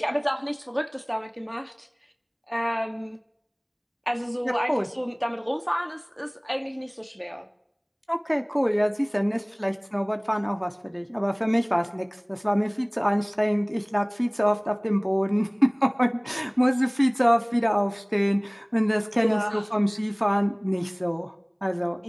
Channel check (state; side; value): identical; both; correlation 1.00